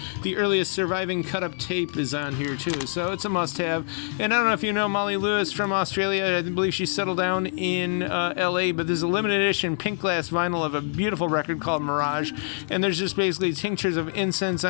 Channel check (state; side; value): silent; right; 62 dB below the other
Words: the earliest surviving cut-up tape is on here, too. So it's a must-have. And I don't know if you know Molly Lewis from Australia. I believe she settled down in L.A., but there's a limited edition pink glass vinyl of a beautiful record called Mirage. And there's just basically tinctures of incense